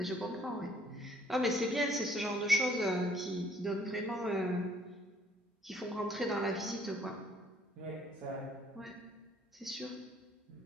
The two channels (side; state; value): both; normal; correlation 0.61